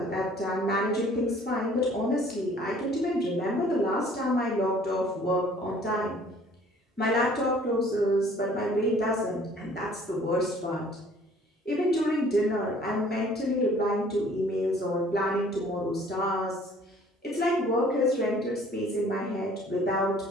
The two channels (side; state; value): both; normal; correlation 0.55